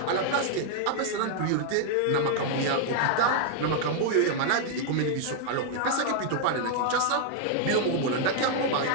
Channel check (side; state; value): both; different; correlation 0.00